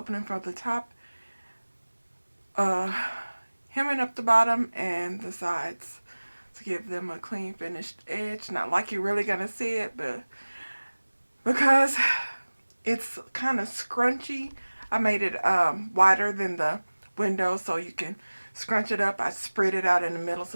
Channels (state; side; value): inverted; both; correlation -1.00